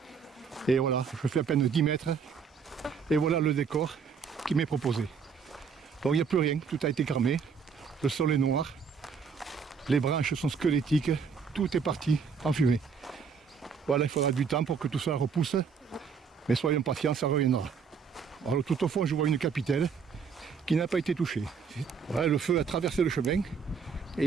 Et voilà, je fais à peine 10 mètres. Et voilà le décor qui m'est proposé. Donc il n'y a plus rien, tout a été cramé. Le sol est noir. Les branches sont squelettiques. Tout est parti en fumée. Voilà, il faudra du temps pour que tout ça repousse. Mais soyons patients, ça reviendra. Alors tout au fond, je vois une capitelle qui n'a pas été touchée. Voilà, le feu a traversé le chemin et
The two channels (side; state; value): left; quieter; 6.0 dB